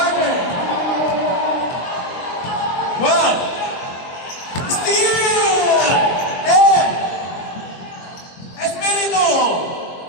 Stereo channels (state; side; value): late; right; 23 ms